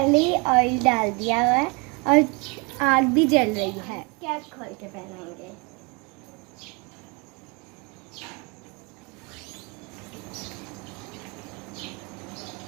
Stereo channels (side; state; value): left; quieter; 29.3 dB